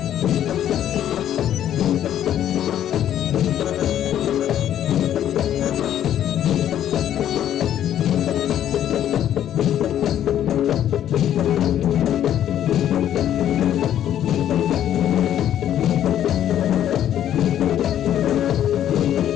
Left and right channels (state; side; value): quieter; right; 10.9 dB